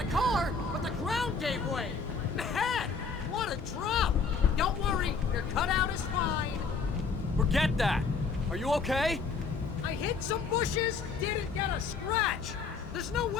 car, but the ground gave way. Man, what a drop! Don't worry, your cutout is fine. Forget that! Are you okay? I hit some bushes, didn't get a scratch. There's no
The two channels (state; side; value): quieter; right; 5.0 dB